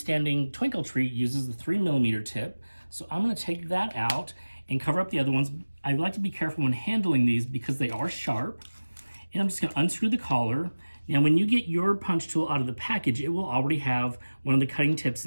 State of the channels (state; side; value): inverted; both; correlation -1.00